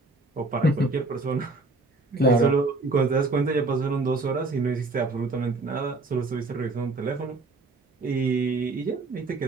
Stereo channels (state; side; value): quieter; left; 3.2 dB